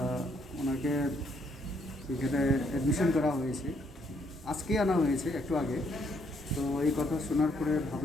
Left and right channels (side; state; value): both; normal; correlation 0.71